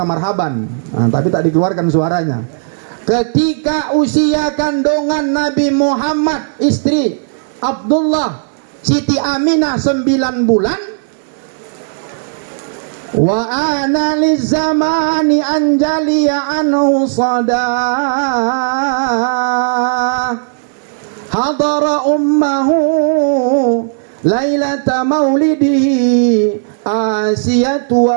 marhaban. Nah, tapi tak dikeluarkan suaranya. Ketika usia kandungan Nabi Muhammad, istri Abdullah, Siti Aminah 9 bulan. Wa ana lizamani anjaliya anhu sadah. Hadara ummahu Lailata maulidihi Asiyatu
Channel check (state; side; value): silent; left; digital silence